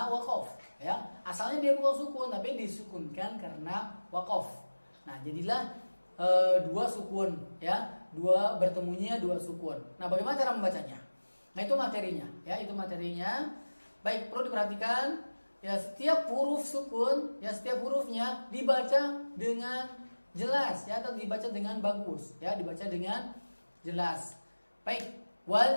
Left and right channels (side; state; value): both; inverted; correlation -1.00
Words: waqaf ya. Asalnya dia bukan sukun tapi disukunkan karena waqaf. Nah, jadilah dua sukun ya, bertemunya dua sukun. Nah, bagaimana cara membacanya? Nah, itu materinya ya, itu materinya. Baik, perlu diperhatikan ya, setiap huruf sukun ya, setiap hurufnya dibaca dengan jelas ya, atau dibaca dengan bagus ya, dibaca dengan jelas. Baik,